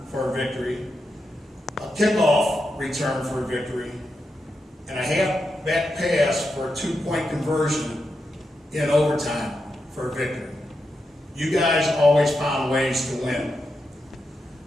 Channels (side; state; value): both; normal; correlation 0.86